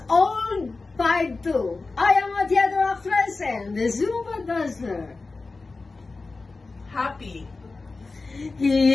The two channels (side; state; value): right; quieter; 3.8 dB